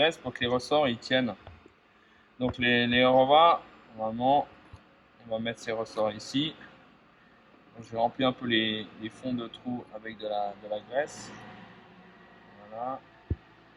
pour que les ressorts ils tiennent. Donc les revas, normalement, on va mettre ces ressorts ici. Donc, je vais remplir un peu les fonds de trous avec de la graisse. Voilà.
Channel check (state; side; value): identical; both; correlation 1.00